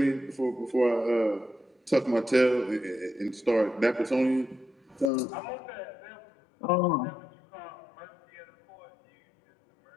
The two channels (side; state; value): right; drops out; at 5.1 s